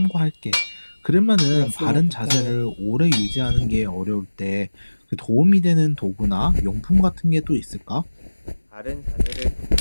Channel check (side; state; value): both; inverted; correlation -1.00